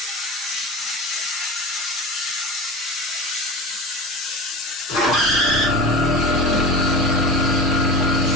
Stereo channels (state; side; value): normal; both; correlation 0.31